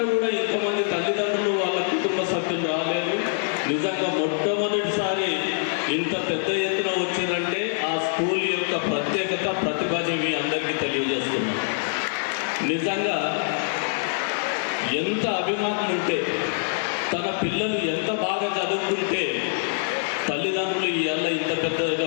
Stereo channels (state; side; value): silent; right; digital silence